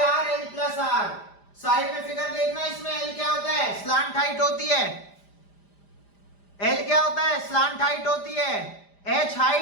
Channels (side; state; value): right; late; 5.0 ms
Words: L plus R। Side में फिगर देखना, इसमें L क्या होता है? स्लांट हाइट होती है। L क्या होता है? स्लांट हाइट होती है। H